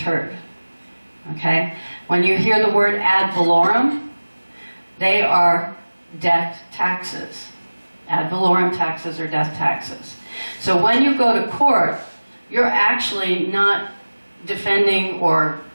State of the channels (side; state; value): both; inverted; correlation -1.00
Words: Okay? When you hear the word ad valorem, they are death taxes. Ad valorem taxes are death taxes. So when you go to court, you're actually not defending or